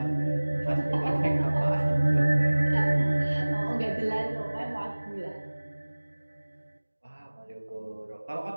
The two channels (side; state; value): both; inverted; correlation -1.00